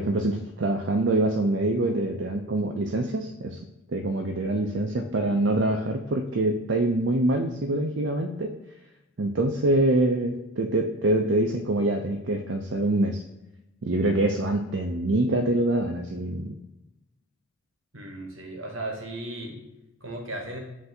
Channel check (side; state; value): both; normal; correlation 0.32